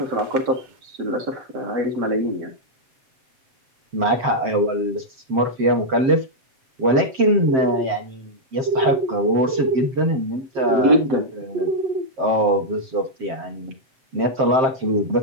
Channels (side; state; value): left; late; 7.6 ms